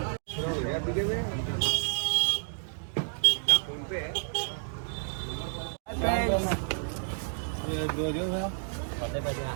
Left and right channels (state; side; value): silent; left; digital silence